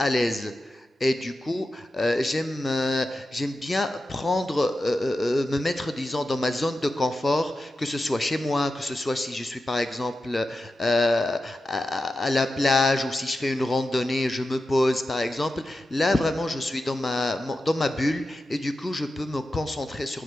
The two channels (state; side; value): normal; both; correlation 0.91